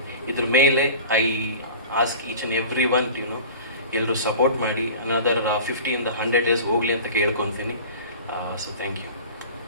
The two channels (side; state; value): both; inverted; correlation -0.39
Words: ಇದ್ರ ಮೇಲೆ I ask each and every one ಎಲ್ಲರೂ support ಮಾಡಿ another 50 ಇಂದ 100 days ಹೋಗಲಿ ಅಂತ ಕೇಳ್ಕೊತೀನಿ. So thank you.